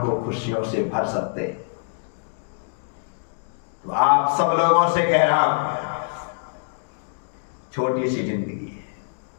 को खुशियों से भर सकते। तो आप सब लोगों से कह रहा हूं, छोटी सी जिंदगी है,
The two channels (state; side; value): silent; right; digital silence